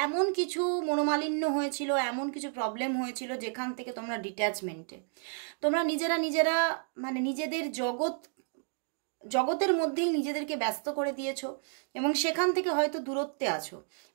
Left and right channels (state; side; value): silent; left; 57 dB below the other